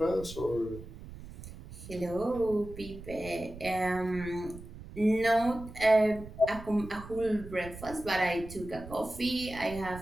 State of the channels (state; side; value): noise; right; rumble, 14 dB below the sound